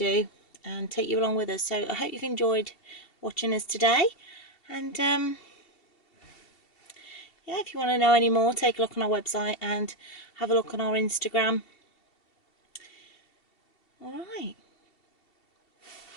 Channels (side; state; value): right; late; 2.7 ms